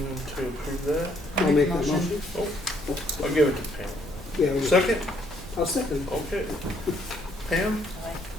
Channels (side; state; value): both; normal; correlation 0.68